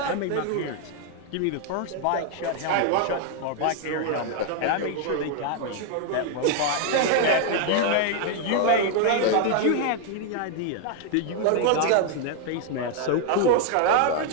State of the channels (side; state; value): both; different; correlation 0.00